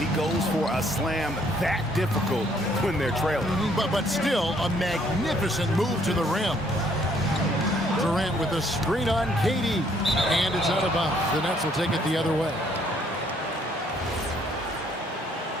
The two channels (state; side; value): normal; both; correlation 0.65